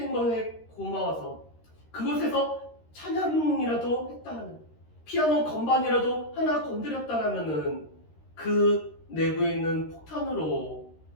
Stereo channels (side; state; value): right; late; 13 ms